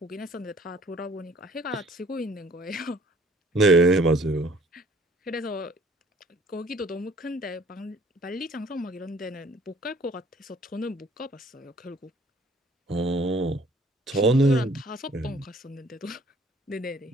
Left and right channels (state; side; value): normal; both; correlation 0.56